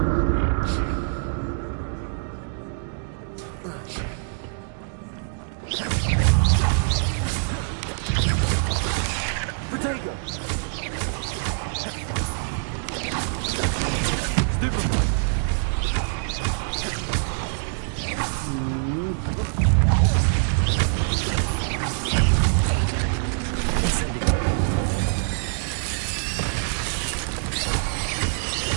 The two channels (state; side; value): silent; left; digital silence